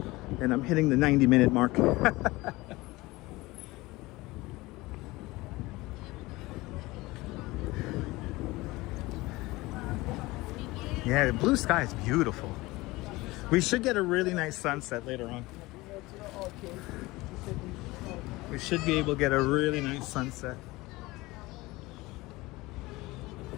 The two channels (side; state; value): right; quieter; 20.7 dB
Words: And I'm hitting the 90-minute mark. Yeah, the blue sky is beautiful. We should get a really nice sunset later on. We should be able to get a really nice sunset.